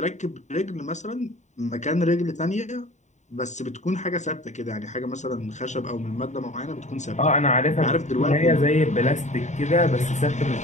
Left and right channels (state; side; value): late; right; 0.34 ms